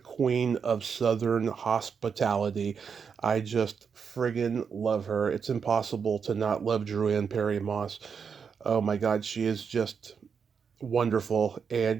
of Southern hospitality. I just friggin' love her. It's impossible to not love Dru-Ann Perry Moss. Oh my God, she is just wonderful,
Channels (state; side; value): quieter; left; 6.4 dB